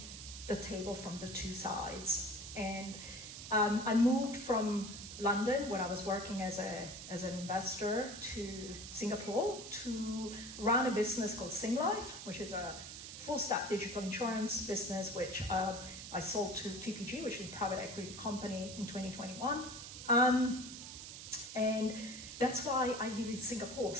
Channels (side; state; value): right; noise; hiss, 10 dB below the sound